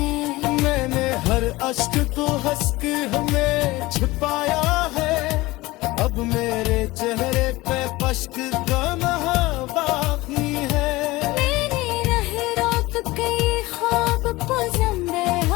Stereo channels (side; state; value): right; quieter; 20.2 dB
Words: मैंने हर अश्क को हंस के हमें छिपाया है, अब मेरे चेहरे पे पश्क का नहा बाकी है। मैंने रह रात के ख्वाब को